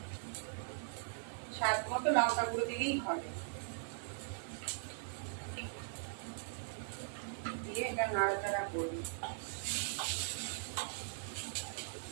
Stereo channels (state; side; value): silent; left; digital silence